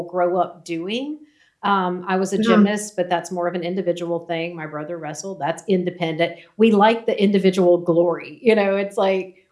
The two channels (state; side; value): identical; both; correlation 1.00